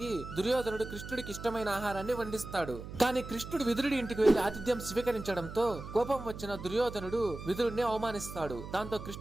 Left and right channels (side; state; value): right; noise; hum, 11 dB below the sound